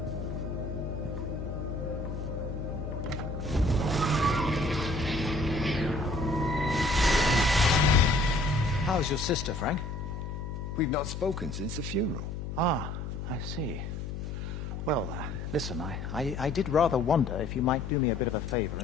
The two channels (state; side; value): noise; left; hum, 6 dB below the sound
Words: How's your sister, Frank? We've not spoken since the funeral. Ah, I see. Well, listen, I did rather wonder if you might do me a bit of a favor